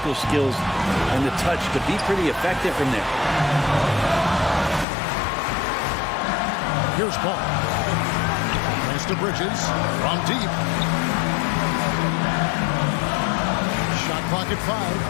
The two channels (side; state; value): right; drops out; at 4.9 s